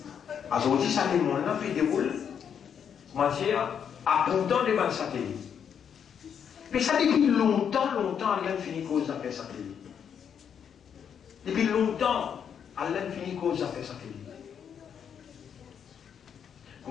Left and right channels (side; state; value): right; quieter; 7.9 dB